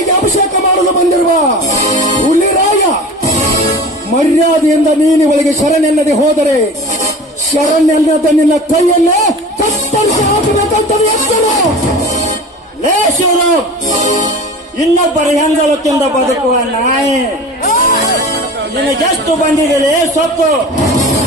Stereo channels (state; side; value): normal; both; correlation 0.37